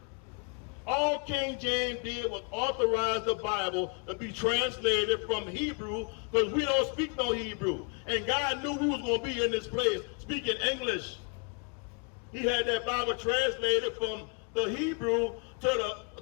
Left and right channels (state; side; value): quieter; right; 37.3 dB